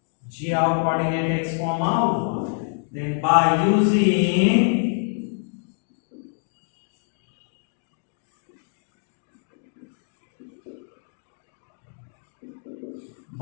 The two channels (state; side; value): silent; right; digital silence